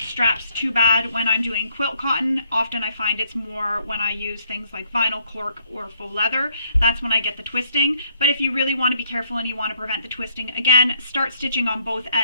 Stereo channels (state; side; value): inverted; both; correlation -0.68